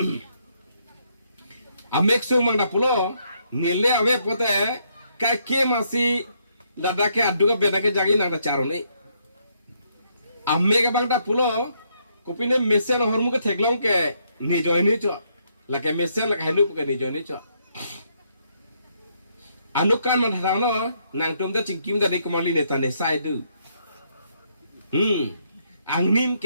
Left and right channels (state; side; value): inverted; both; correlation -0.73